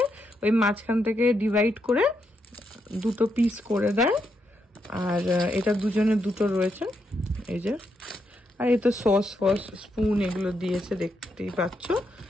ওই মাঝখান থেকে ডিভাইড করে 2টো পিস করে দেয়। আর এটা দুজনের 2টো রয়েছে, এই যে। আর এই তো সস ফস স্পুন এগুলো দিয়েছে, দেখতেই পাচ্ছ।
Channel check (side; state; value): both; normal; correlation 0.80